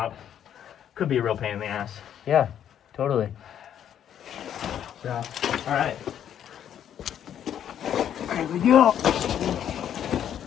Could be a real pain in the ass. Yeah, totally. So, all right. Here we go.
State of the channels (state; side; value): quieter; right; 9.8 dB